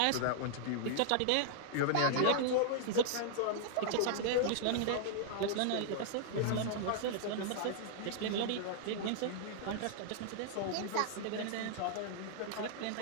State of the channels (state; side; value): different; both; correlation -0.01